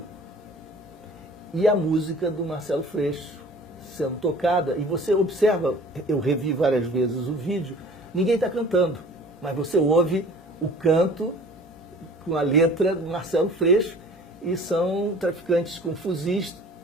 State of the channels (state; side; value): normal; both; correlation 0.47